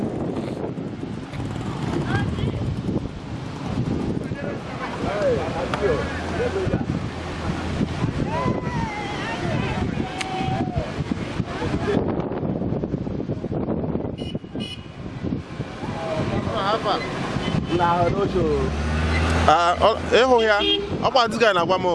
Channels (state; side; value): identical; both; correlation 1.00